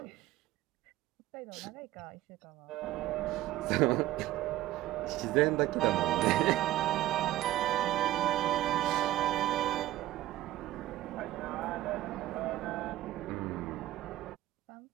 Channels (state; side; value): quieter; left; 15.0 dB